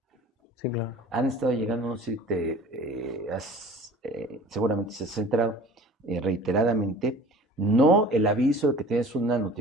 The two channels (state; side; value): normal; both; correlation 0.44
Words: Sí, claro. Han estado llegando, no sé si seguramente se has enterado reiteradamente, no el aviso de que tienes una